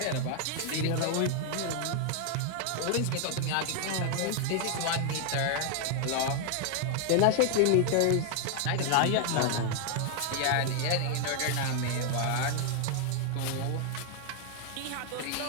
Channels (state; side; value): different; both; correlation 0.00